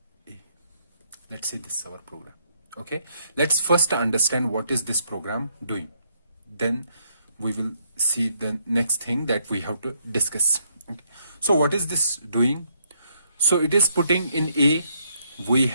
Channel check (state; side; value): inverted; both; correlation -0.73